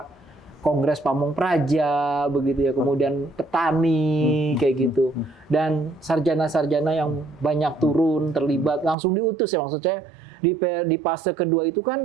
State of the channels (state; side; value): drops out; left; at 9.0 s